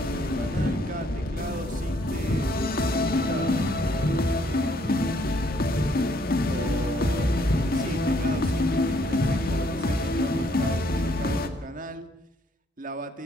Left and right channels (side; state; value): both; normal; correlation 0.67